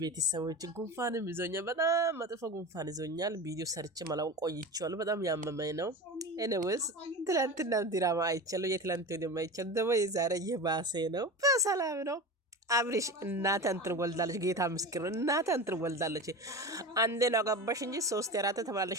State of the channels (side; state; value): both; normal; correlation 0.28